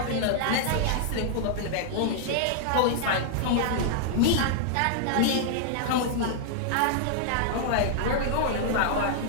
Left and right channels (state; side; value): different; both; correlation -0.01